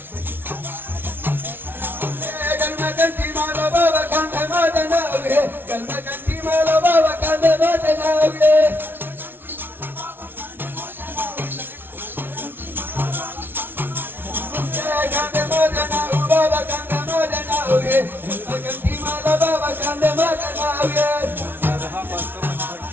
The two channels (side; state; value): left; late; 0.10 ms